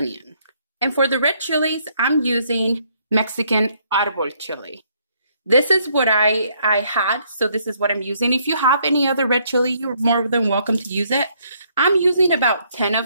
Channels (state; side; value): inverted; both; correlation -0.69